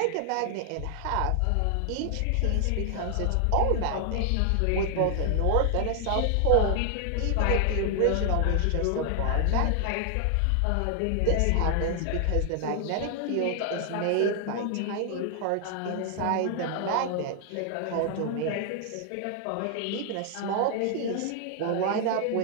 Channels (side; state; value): both; different; correlation 0.00